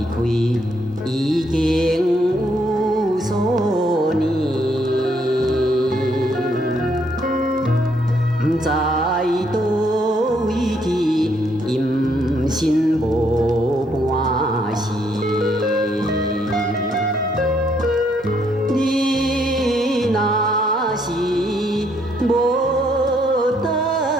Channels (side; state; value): both; normal; correlation 0.71